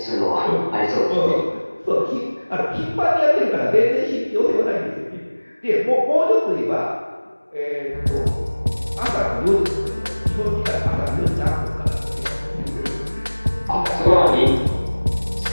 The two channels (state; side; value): inverted; both; correlation -1.00